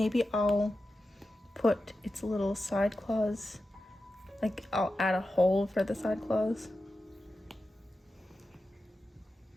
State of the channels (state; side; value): normal; both; correlation 0.92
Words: I'll put its little side claws, like I'll add a hole for the side claws.